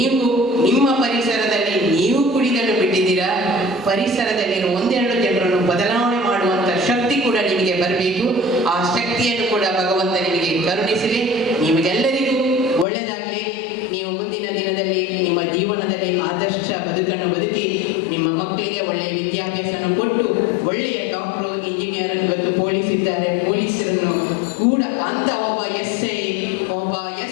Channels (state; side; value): drops out; right; at 12.9 s